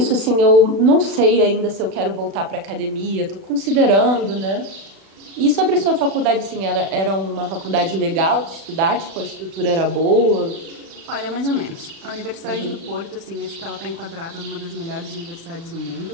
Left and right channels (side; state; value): left; late; 36 ms